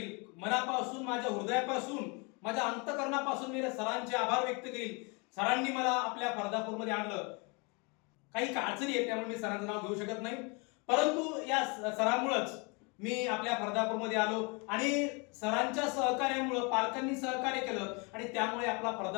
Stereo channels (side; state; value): right; quieter; 31.1 dB